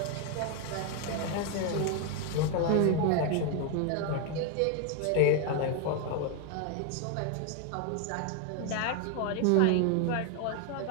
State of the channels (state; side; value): different; both; correlation 0.01